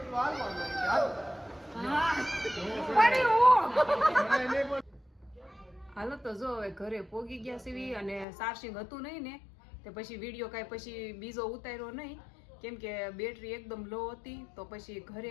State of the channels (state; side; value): drops out; right; at 8.2 s